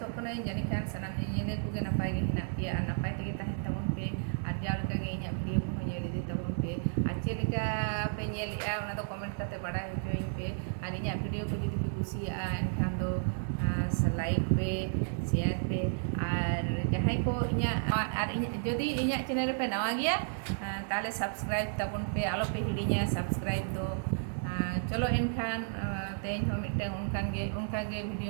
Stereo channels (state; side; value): silent; left; digital silence